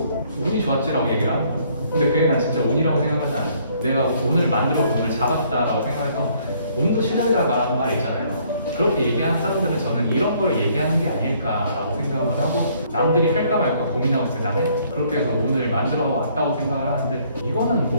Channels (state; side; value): inverted; both; correlation -0.64